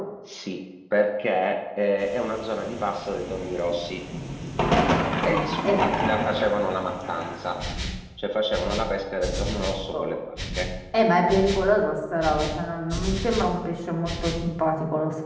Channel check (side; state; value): both; identical; correlation 1.00